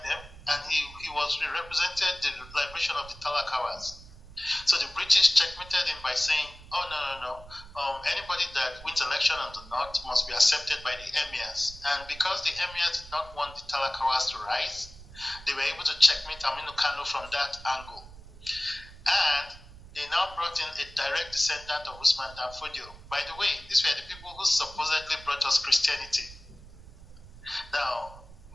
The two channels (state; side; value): noise; right; rumble, 18 dB below the sound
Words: them, and he represented the liberation of the Talakawas. So the British checkmated him by saying, oh, no. Anybody that wins election on the North must be accepted by the emirs. And because the emirs did not want the Talakawas to rise, they were able to checkmate Aminu Kano from that angle. And they now brought in a direct descendant of Usman and Fodio. By the way, these were the people who supposedly brought us Christianity. Now,